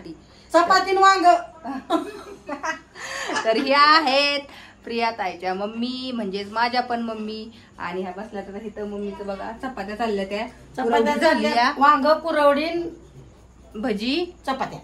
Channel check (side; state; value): both; identical; correlation 1.00